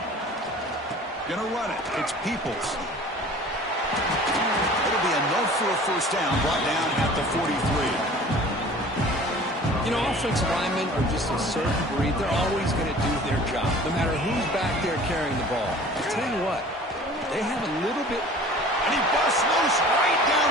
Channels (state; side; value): normal; both; correlation 0.46